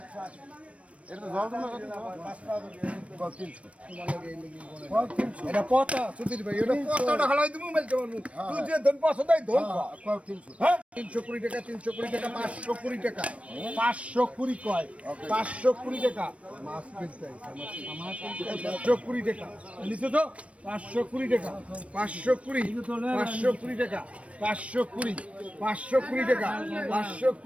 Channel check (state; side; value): late; left; 0.063 ms